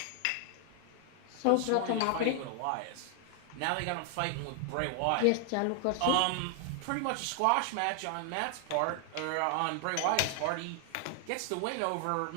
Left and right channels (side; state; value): both; different; correlation 0.00